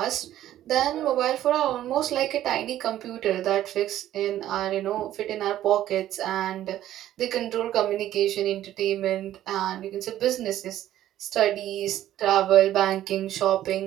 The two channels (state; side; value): quieter; left; 12.8 dB